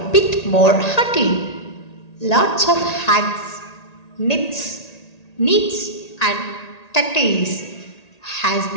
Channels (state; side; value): late; right; 1.9 ms